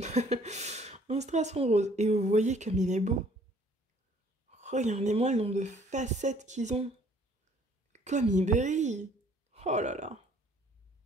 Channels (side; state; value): both; normal; correlation 0.59